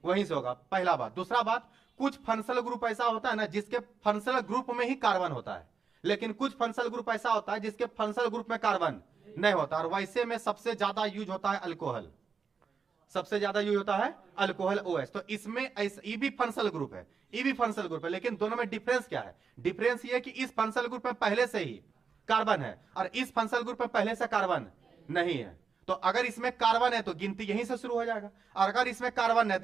वहीं से होगा, पहला बात। दूसरा बात, कुछ फंक्शनल ग्रुप ऐसा होता है ना जिसके फंक्शनल ग्रुप में ही कार्बन होता है, लेकिन कुछ फंक्शनल ग्रुप ऐसा होता है जिसके फंक्शनल ग्रुप में कार्बन नहीं होता। और वैसे में सबसे ज्यादा यूज होता है अल्कोहल, सबसे ज्यादा यूज होता है अल्कोहल OH। तो इसमें ये भी फंक्शनल ग्रुप है, ये भी फंक्शनल ग्रुप है, लेकिन दोनों में डिफरेंस क्या है? डिफरेंस ये है कि इस फंक्शनल ग्रुप में पहले से ही कार्बन है और इस फंक्शनल ग्रुप में पहले से कार्बन नहीं है। तो अगर इसमें कार्बन है तो गिनती यहीं से शुरू हो जाएगा, और अगर इसमें कार्बन है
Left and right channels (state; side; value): quieter; left; 5.7 dB